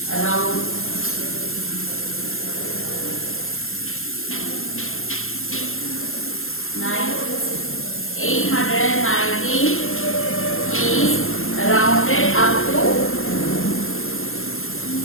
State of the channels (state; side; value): late; right; 0.61 ms